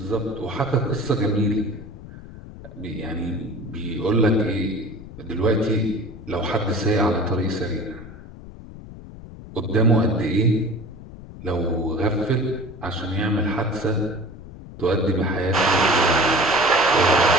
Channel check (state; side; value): noise; left; rumble, 15 dB below the sound